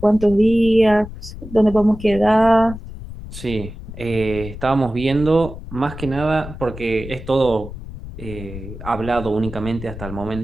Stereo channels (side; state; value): left; noise; rumble, 12 dB below the sound